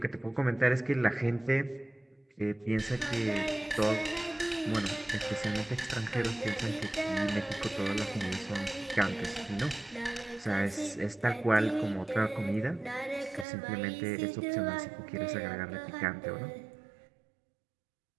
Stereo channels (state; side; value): drops out; left; at 13.5 s